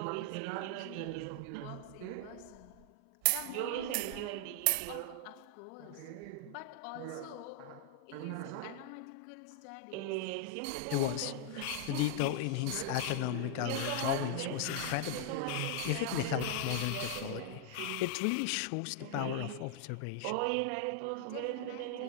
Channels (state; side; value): different; both; correlation -0.01